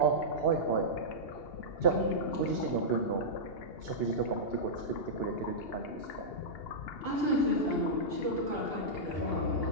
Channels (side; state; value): right; late; 2.8 ms